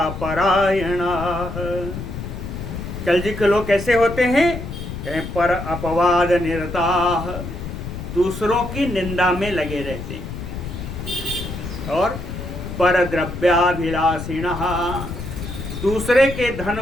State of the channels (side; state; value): left; noise; rumble, 8 dB below the sound